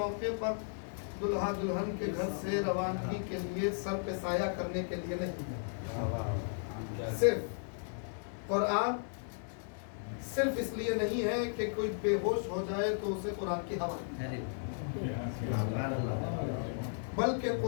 پر دلہا دلہن کے گھر سے روانگی کے لیے سر پہ سایہ کرنے کے لیے نہیں ہے. صرف قرآن صرف اس لیے نہیں ہے کہ کوئی بے ہوش ہو جائے تو اسے قرآن کی ہوا، بلکہ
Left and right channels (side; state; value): right; silent; digital silence